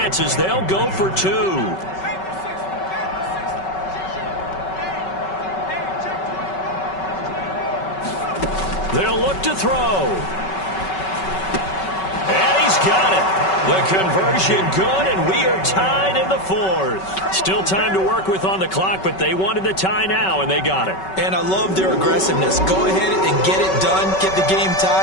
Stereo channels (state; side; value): late; right; 5.3 ms